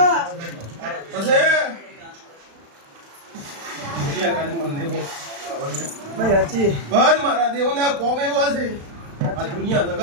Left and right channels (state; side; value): late; left; 35 ms